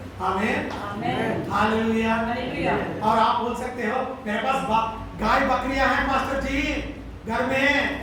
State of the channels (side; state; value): both; identical; correlation 1.00